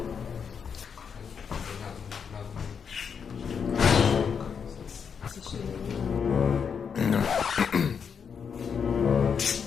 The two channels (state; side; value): quieter; right; 6.7 dB